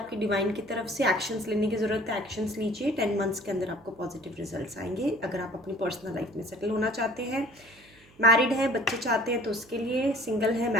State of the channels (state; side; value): noise; right; hum, 28 dB below the sound